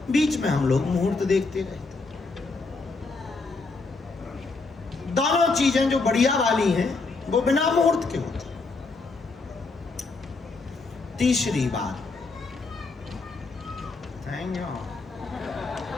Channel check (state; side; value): quieter; right; 3.8 dB